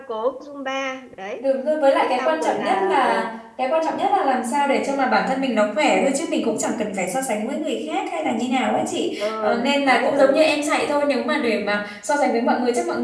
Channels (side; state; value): both; identical; correlation 1.00